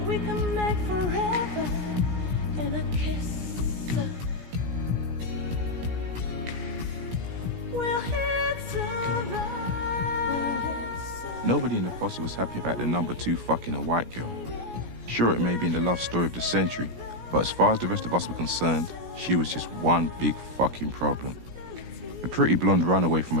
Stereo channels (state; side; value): late; left; 17 ms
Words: We can make forever in a kiss. We'll hit survive. Nobody in the posse was happy about the number 2 fucking a white girl. Sure, it may be in the love story of the century, but as far as the rest of us were concerned, she was just one big fucking problem. A pretty blonde runaway from a